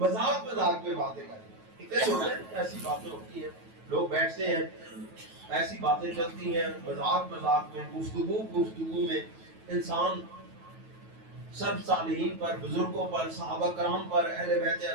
میں باتیں کر رہے ہیں. ایسی باتیں ہوتی ہیں، لوگ بیٹھتے ہیں، ایسی باتیں چلتی ہیں، مذاق میں، گفتگو میں انسان سب صالحین پر، بزرگوں پر، صحابہ کرام پر، اہل بیت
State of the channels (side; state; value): left; late; 9.2 ms